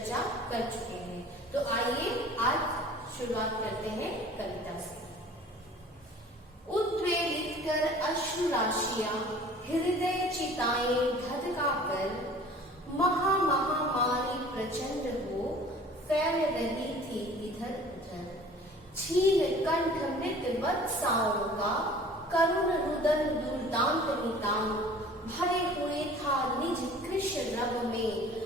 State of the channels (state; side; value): normal; both; correlation 0.47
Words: कर चुके हैं। तो आइए आज शुरुआत करते हैं कविता से। उद्वेलित कर अश्रु राशियां हृदय चिताएं धधका कर, महामारी प्रचंड हो फैल रही थी इधर उधर। छीन कंठ मृत वत्साओं का करुण रुदन दुर्दांत नितांत, भरे हुए था निज कृश रग में